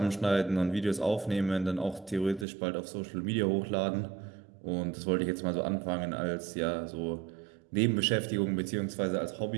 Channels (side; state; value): left; drops out; at 2.5 s